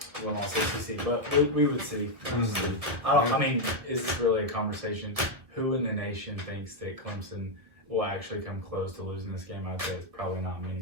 1-loss ACC. But we would see. I mean, is this really a conversation? Who in the nation thinks that Clemson will actually come close to losing this game? I'd say it's probably not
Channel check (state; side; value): late; left; 1.7 ms